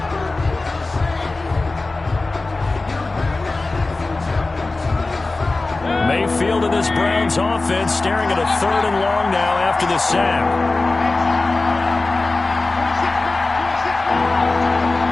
Mayfield and this Browns offense staring at a 3rd and long now after the sack.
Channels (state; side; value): quieter; right; 3.3 dB